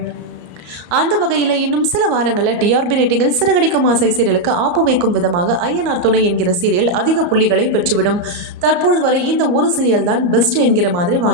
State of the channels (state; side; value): late; left; 34 ms